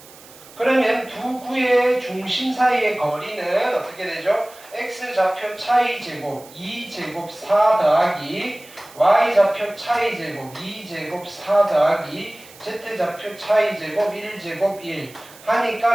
그러면 두 구의 중심 사이의 거리는 어떻게 되죠? x 좌표 차이 제곱 2제곱 4 더하기 y 좌표 차이 제곱 2제곱 4 더하기 z 좌표 차이 제곱 1제곱 1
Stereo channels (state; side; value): noise; right; hiss, 21 dB below the sound